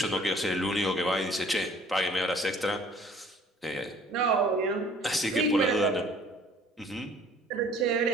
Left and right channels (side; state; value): both; normal; correlation 0.54